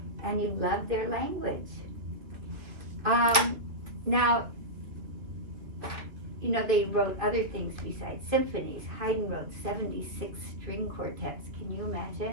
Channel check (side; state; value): left; late; 2.3 ms